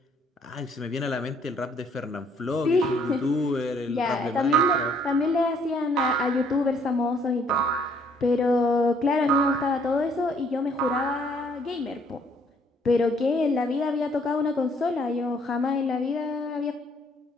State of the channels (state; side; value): normal; both; correlation 0.64